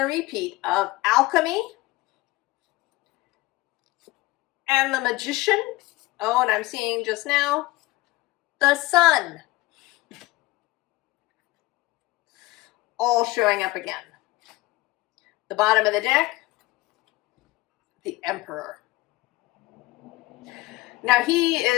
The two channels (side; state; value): right; quieter; 20.0 dB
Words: repeat of Alchemy. And the Magician. Oh, and I'm seeing just now the Sun. All showing up again. The bottom of the deck, the Emperor. Now he